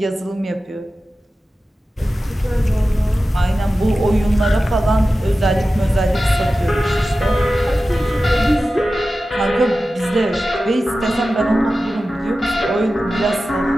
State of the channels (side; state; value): both; normal; correlation 0.94